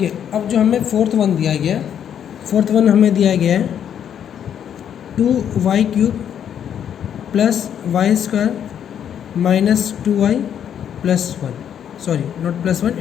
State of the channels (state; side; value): quieter; right; 9.0 dB